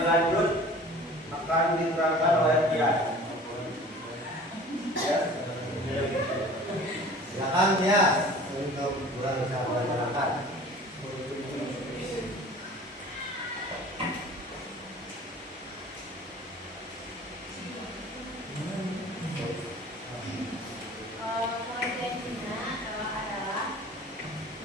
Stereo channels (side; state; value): both; normal; correlation 0.44